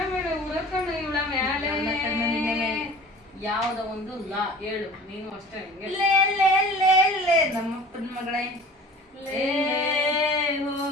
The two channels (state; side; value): normal; both; correlation 0.43